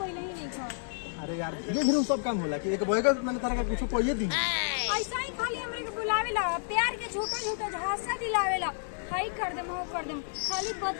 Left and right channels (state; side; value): silent; right; digital silence